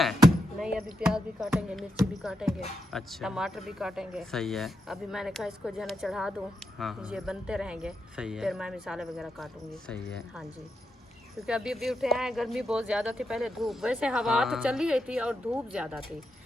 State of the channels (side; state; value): both; normal; correlation 0.84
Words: नहीं अभी प्याज भी काटेंगे, मिर्ची भी काटेंगे, अच्छा टमाटर भी काटेंगे। सही है। अभी मैंने कहा इसको जो है ना चढ़ा दूँ, हाँ ये बनते रहेंगे, सही है, फिर मैं मिसाले वगैरह काटूंगी। सही है। हाँ जी, क्योंकि अभी अभी उठे हैं, गर्मी बहुत ज़्यादा थी, पहले धूप, वैसे हवा तो चल ही रही थी और धूप ज़्यादा थी,